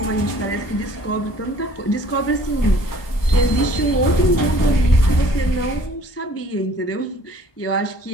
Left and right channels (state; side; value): late; right; 1.2 ms